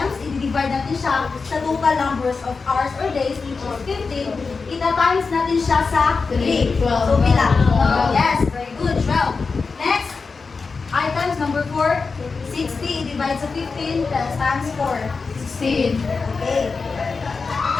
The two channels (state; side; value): quieter; right; 4.6 dB